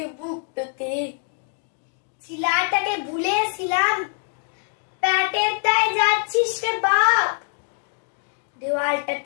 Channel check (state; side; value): silent; right; 57 dB below the other